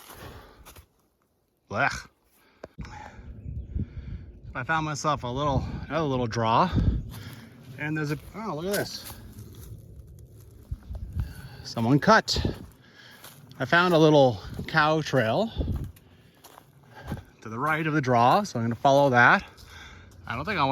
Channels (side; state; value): both; identical; correlation 1.00